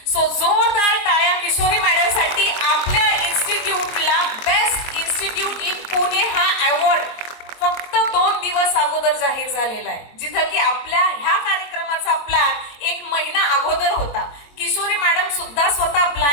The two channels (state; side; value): late; right; 22 ms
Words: So जोरदार टाळ्या किशोरी मॅडम साठी. आपल्या इन्स्टिट्यूटला बेस्ट इन्स्टिट्यूट इन पुणे हा अवॉर्ड फक्त 2 दिवस अगोदर जाहीर झालेला आहे, जिथं की आपल्या ह्या कार्यक्रमाचा प्लॅन 1 महिना अगोदर होता. किशोरी मॅडम सुद्धा स्वतः